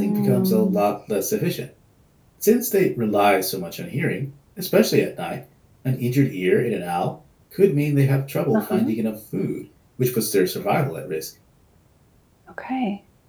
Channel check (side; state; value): both; identical; correlation 1.00